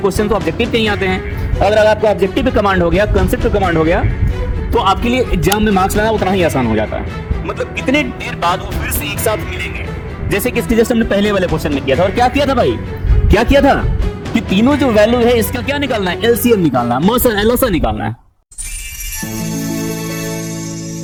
क्वेश्चन तो ऑब्जेक्टिव के ही आते हैं। अगर आपको ऑब्जेक्टिव पे कमांड हो गया, कंसेप्ट पे कमांड हो गया, तो आपके लिए एग्जाम में मार्क्स लाना उतना ही आसान हो जाता है। मतलब कितने देर बाद वो फिर से एक साथ मिलेंगे, जैसे कि इसके जैसे हमने पहले वाले क्वेश्चन में किया था। और क्या किया था भाई, क्या किया था कि तीनों जो वैल्यू है इसका क्या निकालना है, एलसीएम निकालना है, मौसा एलओसा निकालना है।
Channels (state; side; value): identical; both; correlation 1.00